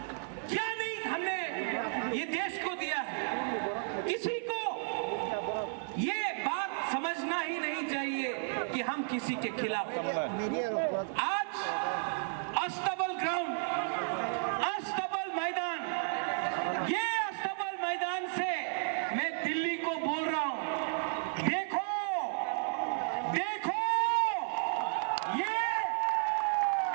क्या नहीं हमने ये देश को दिया है? किसी को ये बात समझना ही नहीं चाहिए कि हम किसी के खिलाफ। आज अस्तबल ग्राउंड, अस्तबल मैदान, ये अस्तबल मैदान से मैं दिल्ली को बोल रहा हूं, देखो देखो, ये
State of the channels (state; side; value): silent; left; 56 dB below the other